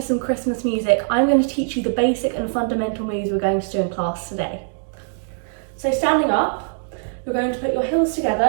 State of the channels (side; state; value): left; silent; digital silence